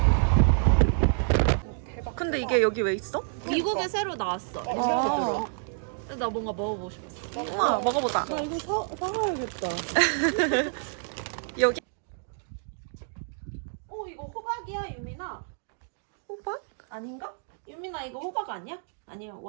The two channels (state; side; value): silent; left; digital silence